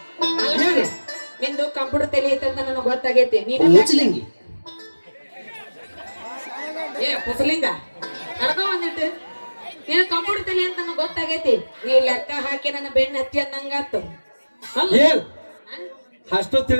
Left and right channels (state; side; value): inverted; both; correlation -1.00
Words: ನಿಂದು ಕಂಪ್ಯೂಟರ್ ತಲಿ ಐತಂತ ನನಗೆ ಗೊತ್ತಾಗೈತಿ. ನೀನು ಕುಸಲಿಂಗ ಕಡ್ಕೊ ಬಂದಿಟ್ಟು ನೀನು ಕಂಪ್ಯೂಟರ್ ತಲಿ ಅಂತ ನನಗೆ ಗೊತ್ತಾಗೈತಿ. ನೀ ಲೆಕ್ಕ ಹಾಕಿ ನನ್ನ ಬೆನ್ನ ಹತ್ತಿ ಅನ್ನಂಗಾತು. ಏನ್ ಅಷ್ಟು